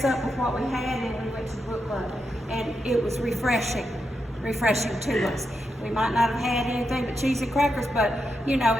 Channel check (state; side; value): normal; both; correlation 0.85